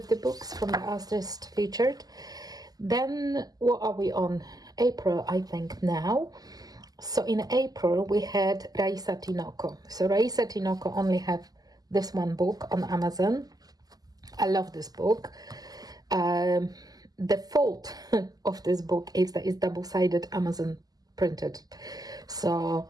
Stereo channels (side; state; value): left; late; 0.18 ms